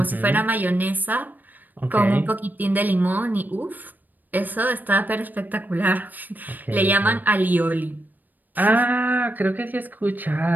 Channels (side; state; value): left; late; 0.087 ms